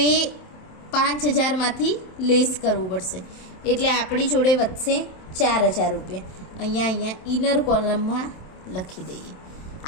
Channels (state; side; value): late; right; 27 ms